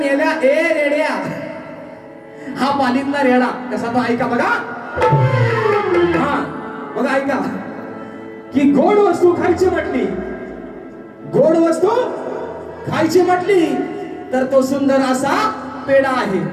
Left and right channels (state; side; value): identical; both; correlation 1.00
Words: ए रेड्या, हा पालीतला रेडा कसा तो ऐका बघा. हा बघा ऐका की गोड वस्तू खायची म्हटली, गोड वस्तू खायची म्हटली तर तो सुंदर असा पेढा आहे,